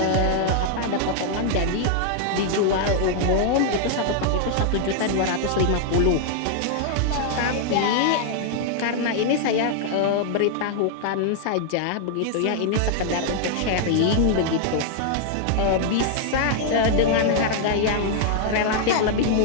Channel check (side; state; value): both; different; correlation 0.00